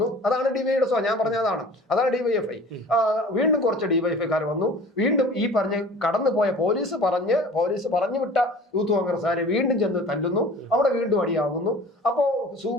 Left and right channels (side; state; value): both; normal; correlation 0.43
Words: അതാണ് ഡിവൈയുടെ ഞാൻ പറഞ്ഞതാണ്. അതാണ് ഡിവൈഎഫ്ഐ. വീണ്ടും കുറച്ച് ഡിവൈഎഫ്ഐക്കാർ വന്നു. വീണ്ടും ഈ പറഞ്ഞ് കടന്നു പോയ പോലീസ് പറഞ്ഞു വിട്ട യൂത്ത് കോൺഗ്രസ്സുകാരെ വീണ്ടും ചെന്ന് തല്ലുന്നു. അവിടെ വീണ്ടും അടിയാകുന്നു. അപ്പോ